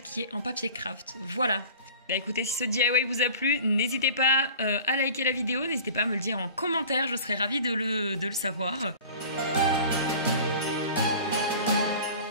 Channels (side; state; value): both; inverted; correlation -0.41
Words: qui est en papier craft. Voilà. Bah écoutez, si ce DIY vous a plu, n'hésitez pas à liker la vidéo, n'hésitez pas à me le dire en commentaire, je serais ravie de le savoir.